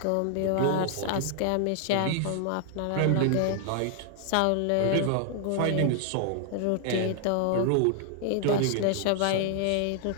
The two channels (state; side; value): different; both; correlation 0.00